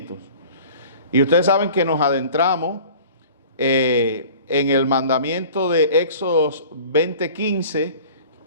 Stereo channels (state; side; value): inverted; both; correlation -0.45